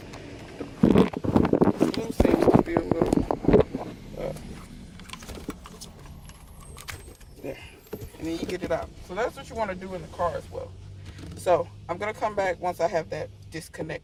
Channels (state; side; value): identical; both; correlation 1.00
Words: the blue seems to be a little there. And then you get it out. So that's what you want to do in the car as well. So I'm going to come back once I have that